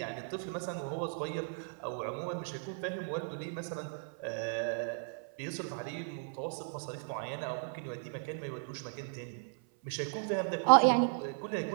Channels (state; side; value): silent; left; 54 dB below the other